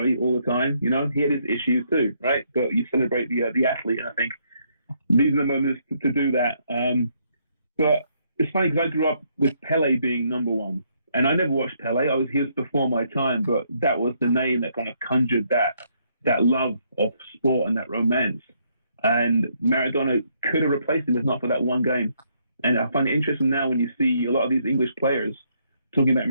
all the time. You know, he had his issues too, right? But you celebrate the athlete, and I think these are the moments to do that. But it's funny because I grew up with Pele being number one. And I never watched Pele. He was before my time, but that was the name that kind of conjured that love of sport and that romance. And Maradona could have replaced him if not for that one game. And I find it interesting now when you see a lot of these English players talking about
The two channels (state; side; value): inverted; both; correlation -0.72